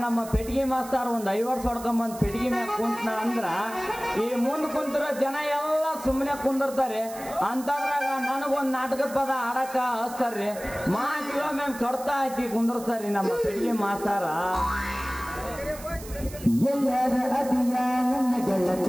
ನಮ್ಮ ಪೆಟ್ಟಿಗೆ ಮಾಸ್ತಾರ ಒಂದ್ 5 ವರ್ಷ ಹೊಡ್ಕೊಂಬಂದ್ ಪೆಟ್ಟಿಗೆ ಮ್ಯಾಕ್ ಕುಂತನ ಅಂದ್ರ ಈ ಮುಂದ್ ಕುಂತಿರೋ ಜನ ಎಲ್ಲ ಸುಮ್ಮನೆ ಕುಂದಿರ್ತಾರೆ. ಅಂತದ್ರಾಗ ನನಗೊಂದ್ ನಾಟಕದ ಪದ ಆಡಕ ಹಚ್ತಾರ್ರಿ. ಮ್ಯಾಮ್ ಕಡ್ತಾ ಹಾಕಿ ಕುಂದರ್ಸ್ತಾರ್ರಿ ನಮ್ಮ ಪೆಟ್ಟಿಗೆ ಮಾಸ್ತಾರ. ಎಲ್ಲರ ಅದಿಯ ನನ್ನ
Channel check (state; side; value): noise; right; hiss, 16 dB below the sound